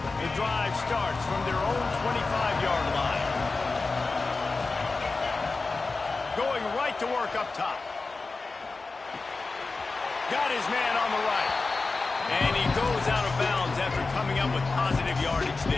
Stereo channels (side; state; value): right; quieter; 3.8 dB